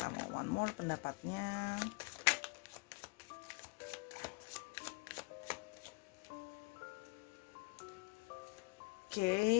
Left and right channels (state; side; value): quieter; right; 28.8 dB